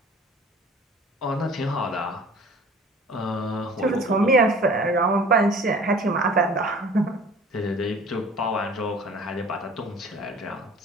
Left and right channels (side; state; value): both; normal; correlation 0.47